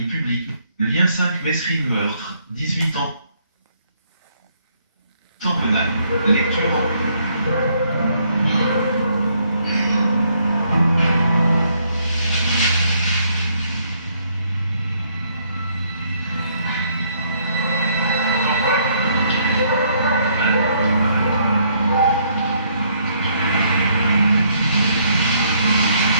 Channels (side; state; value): both; inverted; correlation -0.69